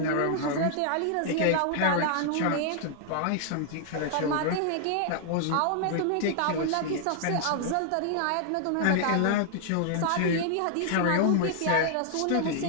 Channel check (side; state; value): both; different; correlation -0.01